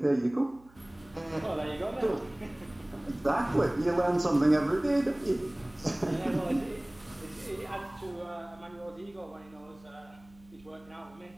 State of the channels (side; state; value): right; noise; hum, 26 dB below the sound